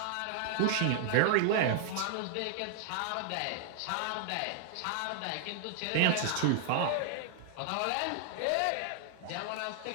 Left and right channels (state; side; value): different; both; correlation -0.01